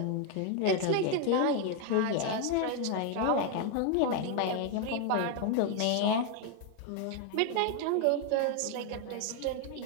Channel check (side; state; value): both; different; correlation 0.01